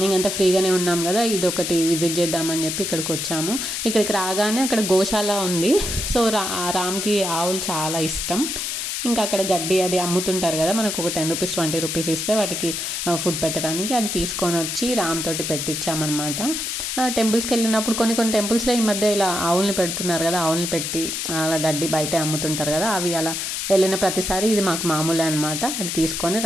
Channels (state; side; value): noise; left; hiss, 3 dB below the sound